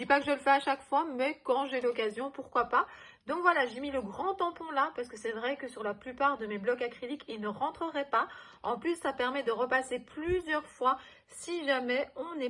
pas que je le fais à chaque fois, mais quand j'ai l'occasion, pourquoi pas. Donc voilà, j'ai mis le grand tampon là parce que c'est vrai que sur la plupart de mes blocs acryliques, il ne rentrerait pas. En plus, ça permet de repasser plusieurs fois si jamais on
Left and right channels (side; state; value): both; identical; correlation 1.00